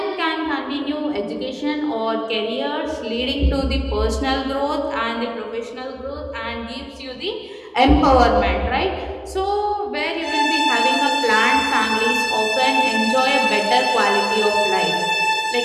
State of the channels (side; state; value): both; identical; correlation 1.00